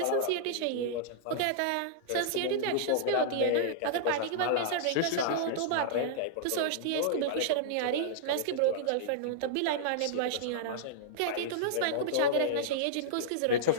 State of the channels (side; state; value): both; different; correlation -0.02